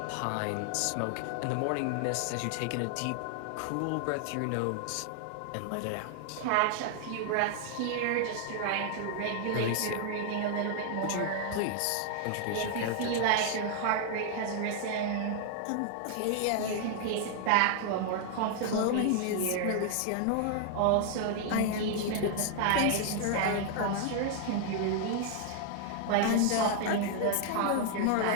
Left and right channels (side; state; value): both; different; correlation 0.00